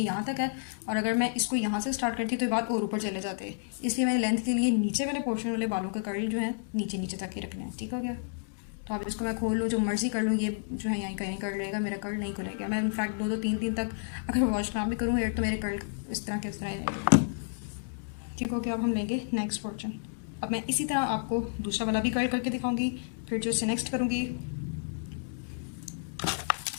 यहाँ तक है, और अगर मैं इसको यहाँ से स्टार्ट करती तो ये बाल और ऊपर चले जाते हैं, इसलिए मैंने लेंथ के लिए नीचे वाले पोर्शन वाले बालों के कर्ल जो है नीचे नीचे तक ही रखने हैं। ठीक हो गया। तो अब इसको मैं खोल लूँ, जो मर्जी कर लूँ, ये जो है यहीं कहीं कर्ल रहेगा, मेरा कर्ल नहीं खुलेगा। मैं इनफैक्ट 2-2 3 तक अगर वॉश ना भी करूँ हेयर तो मेरे कर्ल इस तरह के इस तरह ही रहेंगे। ठीक हो गया। अब हम लेंगे नेक्स्ट पोर्शन। अब मैं इसी तरह आपको दूसरा वाला भी कर्ल करके दिखाऊंगी, फिर जो इससे नेक्स्ट करूँगी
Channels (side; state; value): right; silent; digital silence